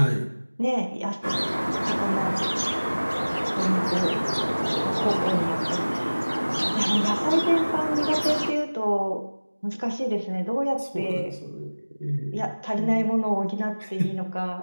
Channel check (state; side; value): inverted; both; correlation -1.00